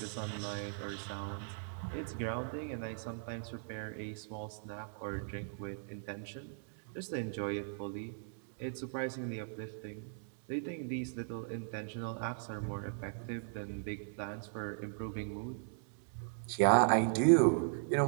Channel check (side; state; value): left; silent; digital silence